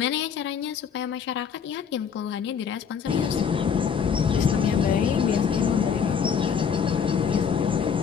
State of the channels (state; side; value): quieter; right; 7.1 dB